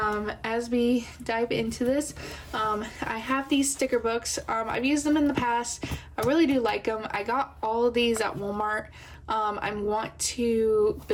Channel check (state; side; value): identical; both; correlation 1.00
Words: we dive into this, I have these sticker books. I've used them in the past. I really do like them. I got all of these at Walmart. I want to